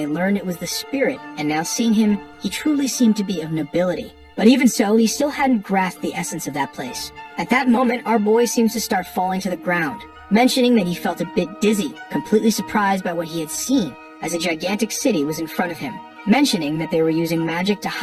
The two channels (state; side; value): identical; both; correlation 1.00